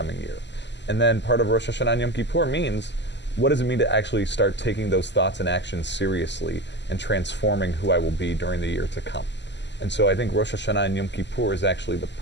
year? And then part of Rosh Hashanah and Yom Kippur means, what does it mean to actually start taking those thoughts and actions seriously and transforming who I will be during the year to come? And so I think Rosh Hashanah and Yom Kippur is actually the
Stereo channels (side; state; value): right; late; 0.51 ms